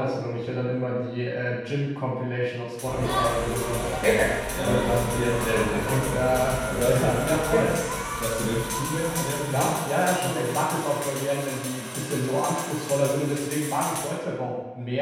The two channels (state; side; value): identical; both; correlation 1.00